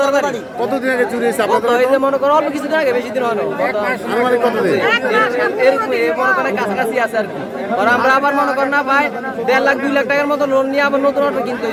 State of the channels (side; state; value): both; identical; correlation 1.00